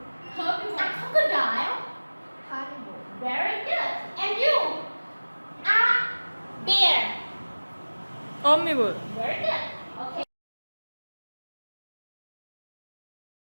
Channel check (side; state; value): both; inverted; correlation -1.00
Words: A crocodile. Carnivore. Very good. And you, a bear. Omnivore. Very good. Okay.